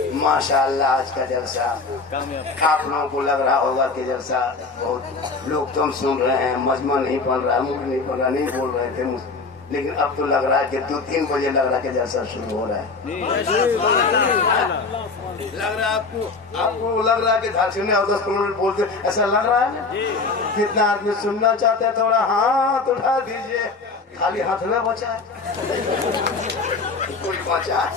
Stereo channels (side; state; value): right; quieter; 4.1 dB